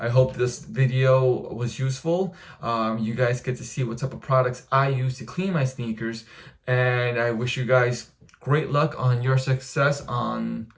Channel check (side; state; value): both; identical; correlation 1.00